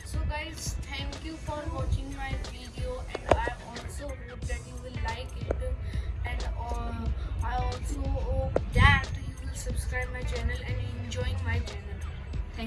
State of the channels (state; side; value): identical; both; correlation 1.00